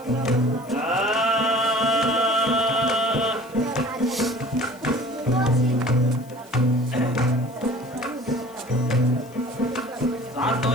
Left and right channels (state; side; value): noise; left; hiss, 26 dB below the sound